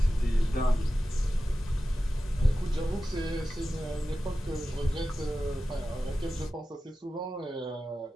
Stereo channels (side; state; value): both; normal; correlation 0.94